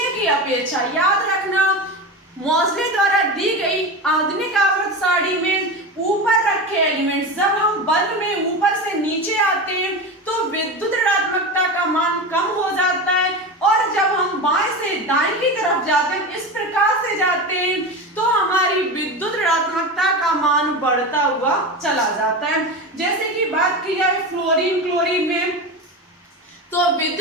की अपेक्षा। याद रखना, मोज़ले द्वारा दी गई आधुनिक आवर्त सारणी में ऊपर रखे एलिमेंट्स जब हम बल्ब में ऊपर से नीचे आते हैं तो विद्युत ऋणात्मकता का मान कम हो जाता है, और जब हम बाएं से दाएं की तरफ जाते हैं, इस प्रकार से जाते हैं, तो हमारी विद्युत ऋणात्मकता का मान बढ़ता हुआ चला जाता है। जैसे कि बात की जाए फ्लोरीन में, तो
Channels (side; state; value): both; normal; correlation 0.24